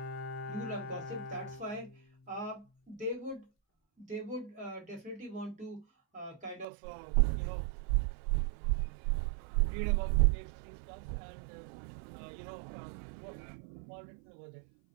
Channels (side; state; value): left; drops out; at 6.7 s